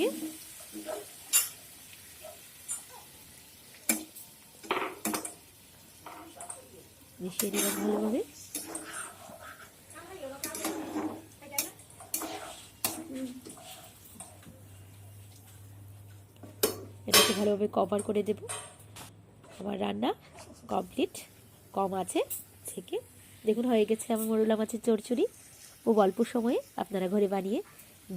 নিলাম ভালোভাবে। এটাকে ভালোভাবে কভার করে দেব। আমার রান্না কমপ্লিট। কম আছে থেকে দেখুন হয়ে গেছে আমার মোরলা মাছের চচ্চড়ি। খুব অল্প সময়ে আপনারা ঘরে বানিয়ে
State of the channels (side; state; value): both; identical; correlation 1.00